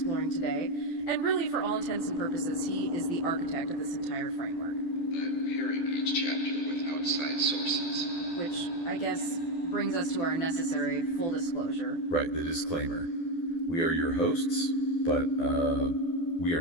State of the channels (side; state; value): right; late; 12 ms